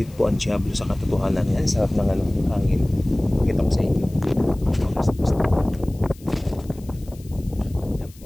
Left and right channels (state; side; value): noise; left; hiss, 25 dB below the sound